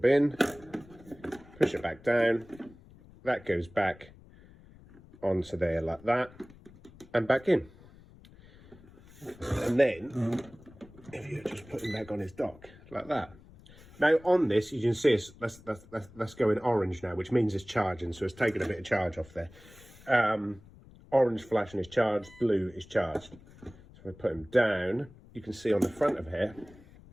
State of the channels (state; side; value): noise; left; rumble, 22 dB below the sound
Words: push it back down. That goes back onto there like that, and back in. And then if you just put him back on his dock like that. Now on this, you can see that's going orange now, which means it's charging, so it's taking a bit of charge off there. Orange flashing is charged, blue is charged. So if I put him down, you can see on the front of here